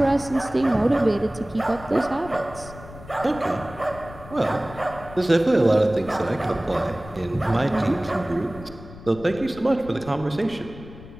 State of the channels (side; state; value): left; noise; rumble, 16 dB below the sound